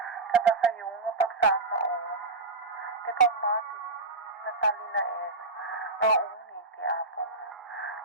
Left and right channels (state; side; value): quieter; left; 3.4 dB